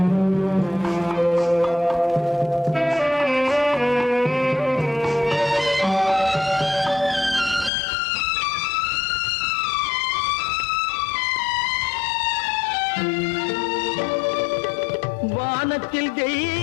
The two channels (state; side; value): drops out; right; at 7.7 s